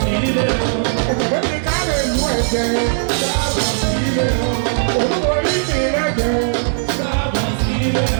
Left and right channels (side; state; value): left; silent; digital silence